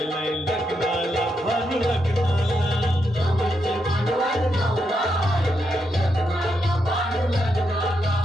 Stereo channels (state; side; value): normal; both; correlation 0.81